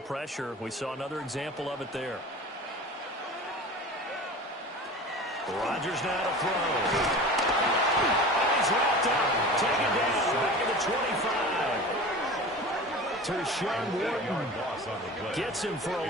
We saw another example of it there. Rodgers now to throw. And he's wrapped up, taken down, back at the 25. Tershawn Wharton gets him for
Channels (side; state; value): both; normal; correlation 0.36